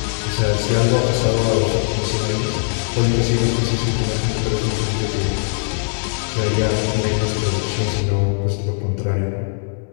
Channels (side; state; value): right; silent; digital silence